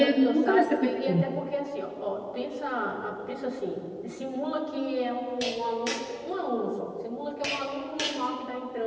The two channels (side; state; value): both; identical; correlation 1.00